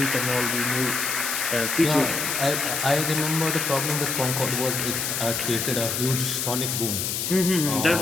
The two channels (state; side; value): noise; left; hiss, 1 dB below the sound